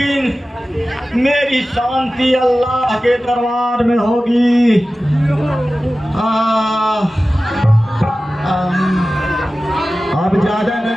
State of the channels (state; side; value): normal; both; correlation 0.95